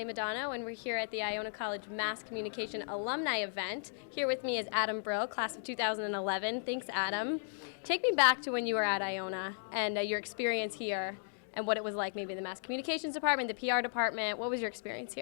and we're here at the Iona College Mass Communication Alumni Event. Here with me is Adam Brill, class of 2011. Thanks, Adam. Take me back to when you were at Iona and your experience here and what it was like, maybe the Mass Communications Department, the PR department. What was your experience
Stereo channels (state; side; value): silent; right; digital silence